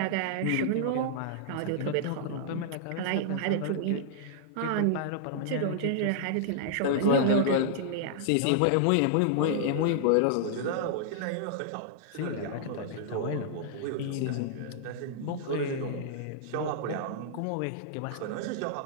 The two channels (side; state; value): both; different; correlation -0.01